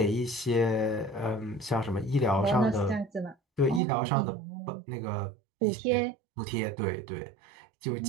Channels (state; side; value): drops out; left; at 3.8 s